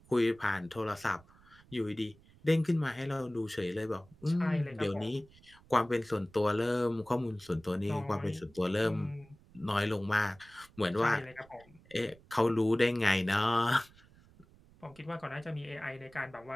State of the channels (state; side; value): noise; right; rumble, 26 dB below the sound